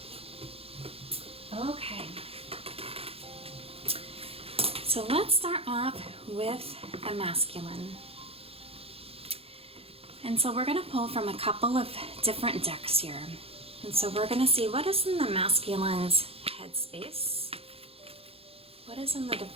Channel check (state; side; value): late; left; 0.28 ms